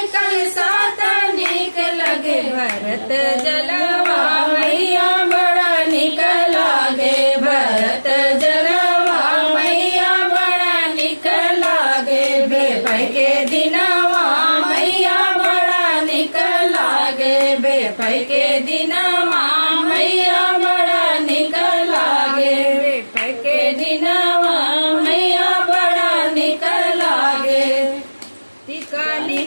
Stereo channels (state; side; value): inverted; both; correlation -1.00